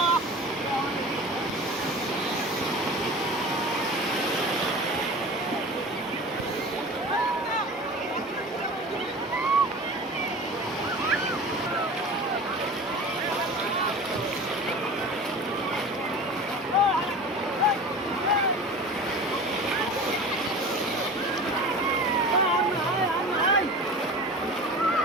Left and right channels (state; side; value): normal; both; correlation 0.36